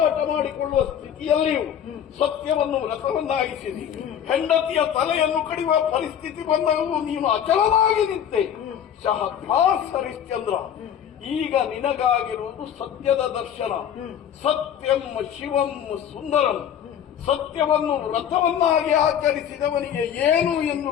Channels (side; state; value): right; quieter; 9.2 dB